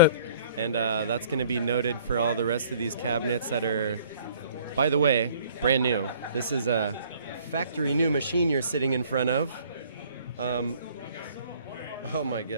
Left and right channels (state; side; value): inverted; both; correlation -0.56